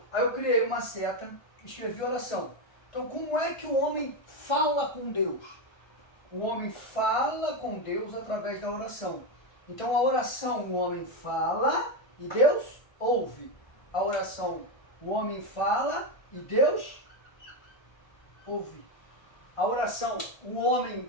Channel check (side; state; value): right; late; 1.3 ms